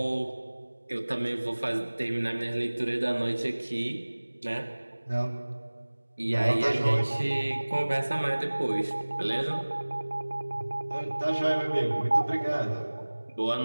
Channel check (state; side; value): inverted; both; correlation -1.00